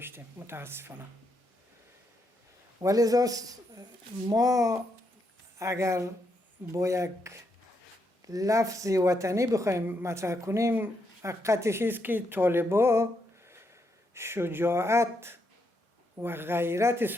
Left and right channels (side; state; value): both; normal; correlation 0.79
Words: متاسفانه. ولذا ما اگر با یک لفظ وطنی بخوایم مطرح کنیم، حقیقتش است که طالبان شجاعت و غیرت